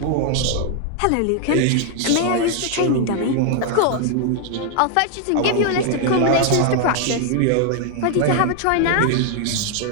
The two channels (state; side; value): different; both; correlation 0.00